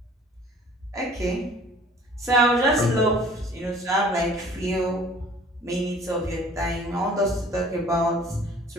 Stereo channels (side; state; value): both; normal; correlation 0.51